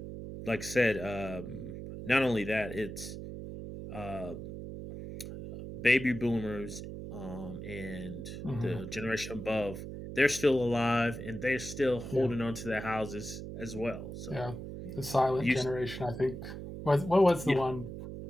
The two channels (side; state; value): right; noise; hum, 9 dB below the sound